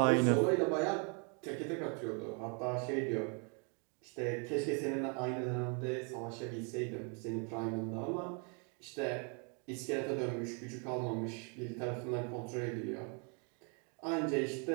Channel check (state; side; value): quieter; left; 37.0 dB